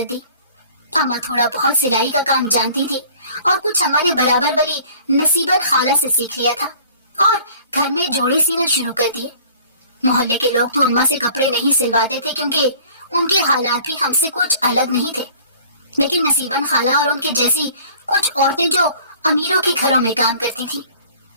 दी। अम्मा थोड़ा बहुत सिलाई का काम जानती थी, और कुछ अम्मा ने बराबर वाली नसीबन खाला से सीख लिया था और घर में जोड़े सीना शुरू कर दिए। मोहल्ले के लोग तो अम्मा से कपड़े नहीं सिलवाते थे, क्योंकि उनके हालात भी हमसे कुछ अलग नहीं थे। लेकिन नसीबन खाला और उनके जैसी कुछ औरतें जो अमीरों के घरों में काम करती थीं,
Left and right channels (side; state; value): both; inverted; correlation -0.50